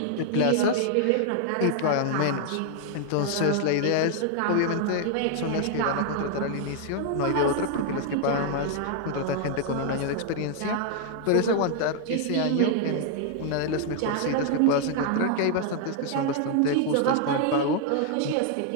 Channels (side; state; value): both; different; correlation 0.00